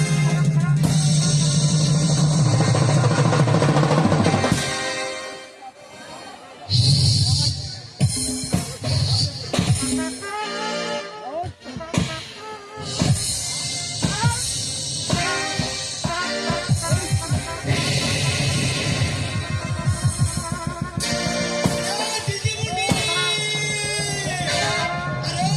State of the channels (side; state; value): both; identical; correlation 1.00